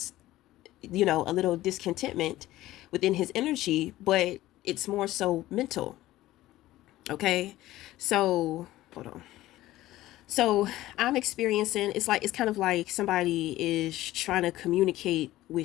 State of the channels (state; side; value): quieter; right; 15.9 dB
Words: a little discontentment within his energy, but it's more so mental. Okay. So hold on. So I'm experiencing, it's kind of like somebody is trying to communicate